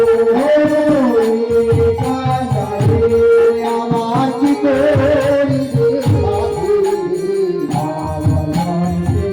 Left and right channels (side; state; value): both; identical; correlation 1.00